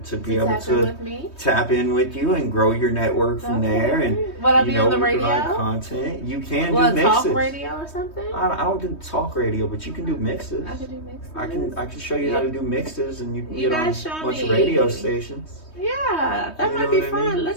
be able to tap in with you and grow your network from there. And what, I be on the radio? Content. You can do mixes. Talk radio or something? I don't do talk radio, but you can do mixes. I can do mixes. I can show you how to do mixes, and you can get on a bunch of me. radio stations. Yeah, that might be fun.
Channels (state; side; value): late; right; 3.2 ms